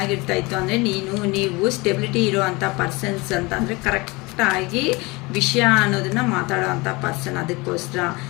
ಇತ್ತು ಅಂದರೆ ನೀವು ಸ್ಟೆಬಿಲಿಟಿ ಇರೋವಂಥ ಪರ್ಸನ್ಸ್ ಅಂತ ಅಂದರೆ ಕರೆಕ್ಟಾಗಿ ವಿಷಯ ಅನ್ನೋದನ್ನು ಮಾತಾಡೋ ಅಂಥ ಪರ್ಸನ್. ಅದಕ್ಕೋಸ್ಕರ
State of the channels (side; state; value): right; quieter; 24.6 dB